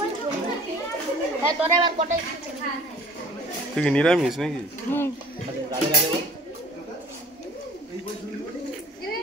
তুই কি নিরামিষ নাকি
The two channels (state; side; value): normal; both; correlation 0.49